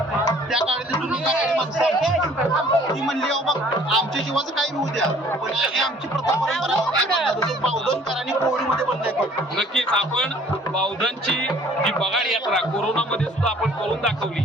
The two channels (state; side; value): normal; both; correlation 0.54